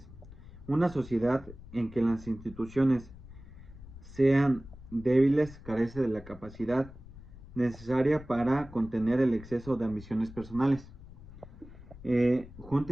Una sociedad en que las instituciones sean débiles carece de la capacidad necesaria para contener el exceso de ambiciones personales.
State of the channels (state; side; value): noise; left; rumble, 17 dB below the sound